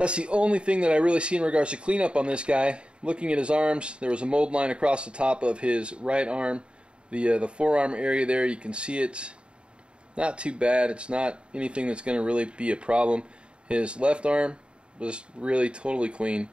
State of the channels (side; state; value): left; late; 0.054 ms